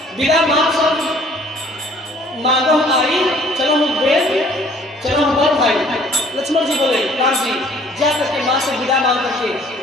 विदा मांगो आई, चलो हम चलो हम बड़ भाई। लक्ष्मण जी बोले, राम जी जा करके माँ से विदा मांग करके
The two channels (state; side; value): normal; both; correlation 0.56